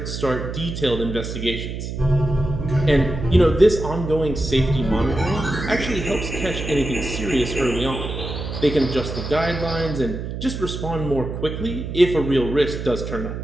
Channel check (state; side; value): noise; right; hum, 6 dB below the sound